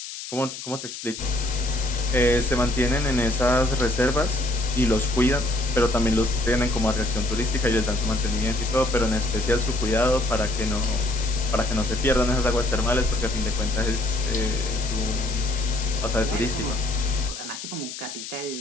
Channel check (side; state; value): left; noise; hiss, 10 dB below the sound